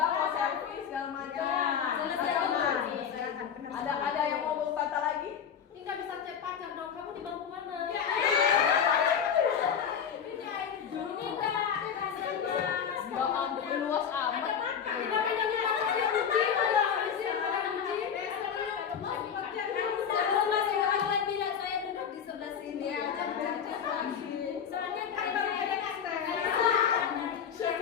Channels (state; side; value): quieter; right; 7.7 dB